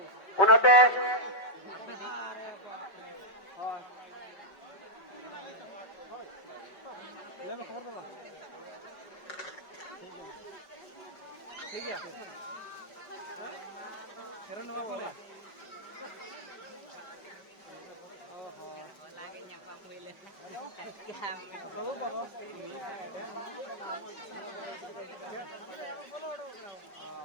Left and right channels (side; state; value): right; late; 5.3 ms